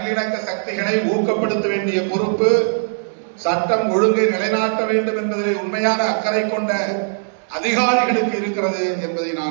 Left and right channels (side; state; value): left; silent; digital silence